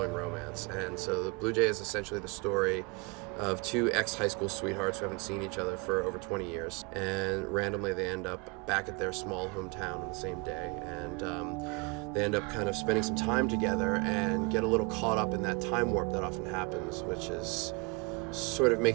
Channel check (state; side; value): quieter; left; 30.2 dB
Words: romance. And so The Blue Jay is essentially the story of two ex-high school sweethearts who haven't seen each other for over 20 years, and randomly they end up back at their small hometown on the same day, and they end up kind of spending some time together and get a little caught up in that time warp that often happens, which is sort of